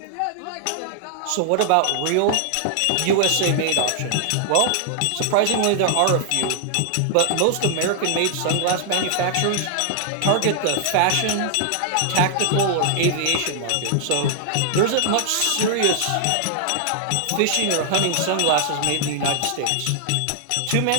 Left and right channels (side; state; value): both; different; correlation 0.00